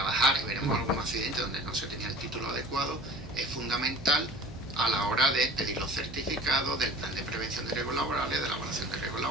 y veremos algún accidente donde no se tenía el título adecuado, es fundamental a la hora de pedir los certificados del plan de prevención de riesgos laborales, de la evaluación de riesgos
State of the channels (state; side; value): normal; both; correlation 0.44